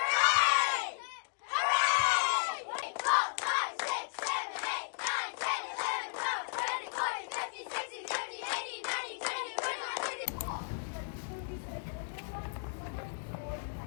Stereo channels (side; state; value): right; silent; digital silence